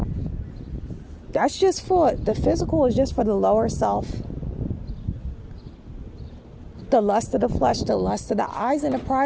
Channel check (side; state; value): both; identical; correlation 1.00